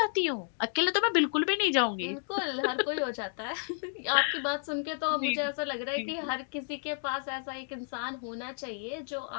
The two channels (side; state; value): right; silent; 57 dB below the other